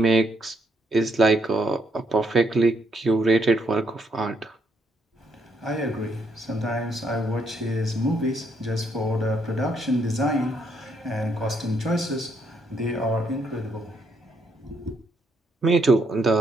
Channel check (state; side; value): normal; both; correlation 0.74